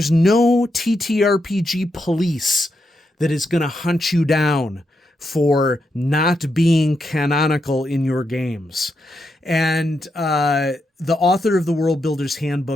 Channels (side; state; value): both; normal; correlation 0.83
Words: no TTRPG police that is going to hunt you down for not being canonical in your games. And the author of the World Builder's